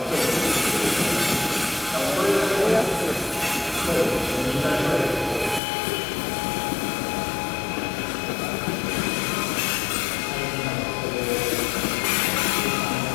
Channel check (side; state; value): right; drops out; at 5.6 s